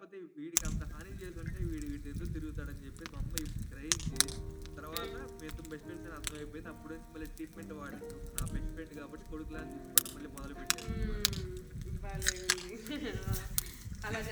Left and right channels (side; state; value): both; identical; correlation 1.00